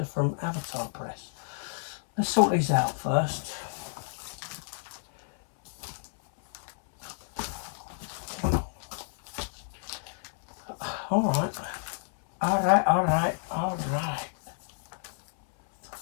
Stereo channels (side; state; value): right; silent; 58 dB below the other